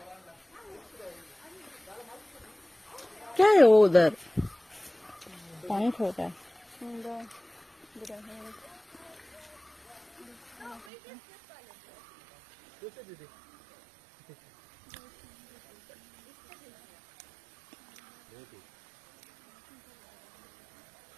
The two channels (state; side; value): drops out; left; at 10.9 s